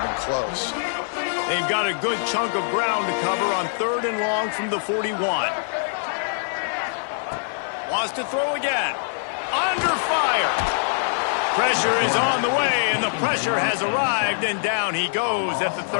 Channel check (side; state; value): right; silent; digital silence